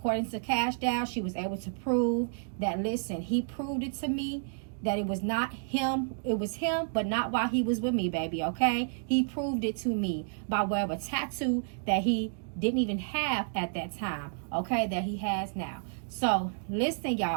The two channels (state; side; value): silent; left; digital silence